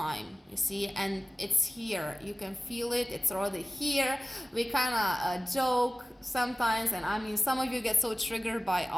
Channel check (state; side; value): normal; both; correlation 0.97